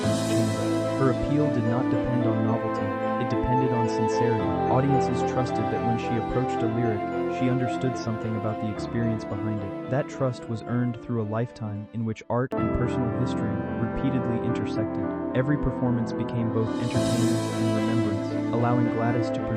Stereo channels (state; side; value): identical; both; correlation 1.00